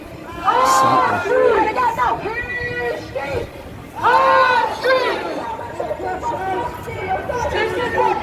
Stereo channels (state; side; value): identical; both; correlation 1.00